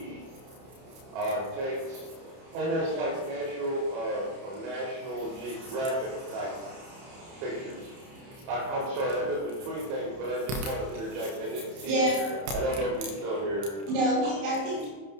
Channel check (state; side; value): late; left; 30 ms